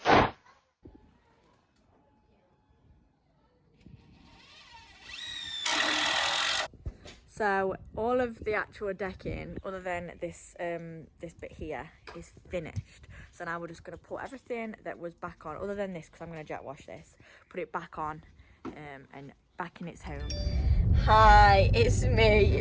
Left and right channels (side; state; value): both; identical; correlation 1.00